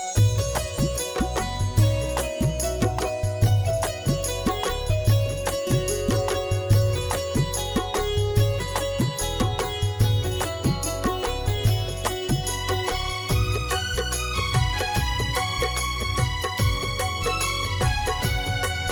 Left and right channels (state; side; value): identical; both; correlation 1.00